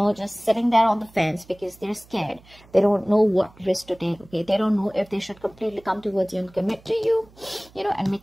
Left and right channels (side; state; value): right; noise; hum, 26 dB below the sound